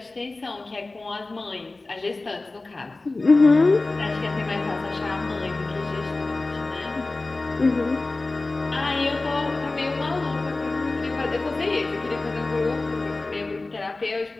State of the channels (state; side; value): quieter; right; 3.2 dB